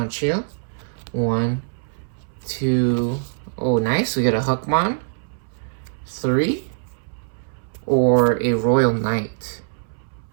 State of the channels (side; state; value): left; silent; 63 dB below the other